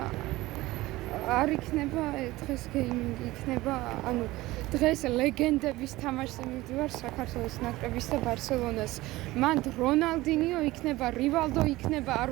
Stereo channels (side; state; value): left; quieter; 18.6 dB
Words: არ იქნება დღეს გეიმინგი იქნება ანუ დღეს ლეგენდების თამაშზე მივდივარ საქართველოს ნაკრების და ბარსელონას მან რონალდინიო იქნება რივალდო იქნება